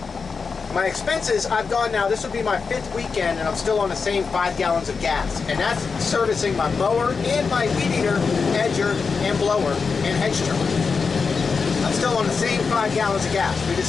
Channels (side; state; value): right; quieter; 5.1 dB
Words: My expenses, I've gone now, this will be my 5th weekend, and I'm still on the same 5 gallons of gas. And that's servicing my mower and my weed eater, edger, and blower, and hedge trimmer. I'm still on the same 5 gallons of gas. We